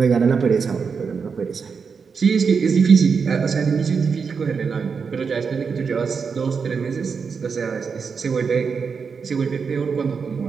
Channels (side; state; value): left; quieter; 5.7 dB